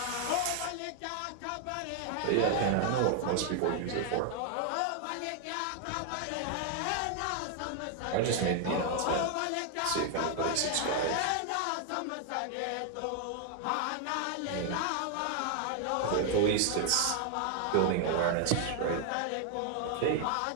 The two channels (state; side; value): different; both; correlation 0.00